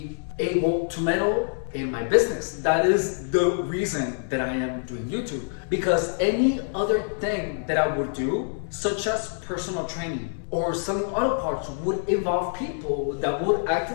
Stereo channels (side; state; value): right; silent; 61 dB below the other